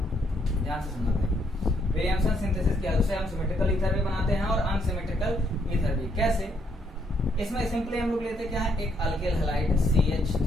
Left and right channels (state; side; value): normal; both; correlation 0.72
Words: ध्यान से सुनना भाई। विलियमसन सिंथेसिस की हेल्प से हम सिमेट्रिकल ईथर भी बनाते हैं और अनसिमेट्रिकल ईथर भी। कैसे? इसमें सिंपली हम लोग लेते क्या है, एक अल्किल हैलाइड